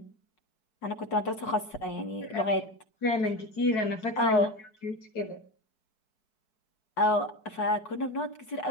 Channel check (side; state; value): right; late; 4.6 ms